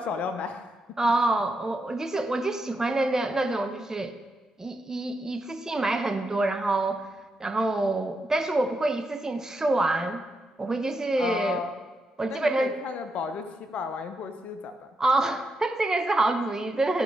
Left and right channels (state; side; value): normal; both; correlation 0.84